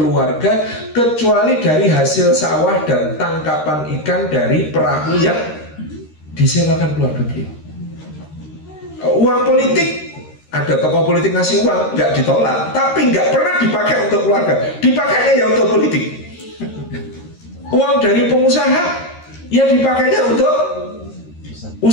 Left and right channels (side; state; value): right; late; 13 ms